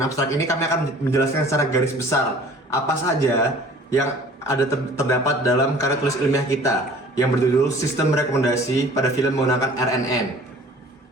abstrak ini kami akan menjelaskan secara garis besar apa saja yang ada terdapat dalam karya tulis ilmiah kita yang berjudul Sistem Rekomendasi pada Film Menggunakan RNN.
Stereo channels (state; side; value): normal; both; correlation 0.49